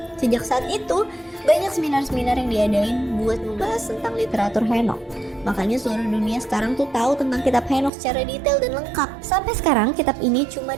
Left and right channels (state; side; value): drops out; left; at 7.9 s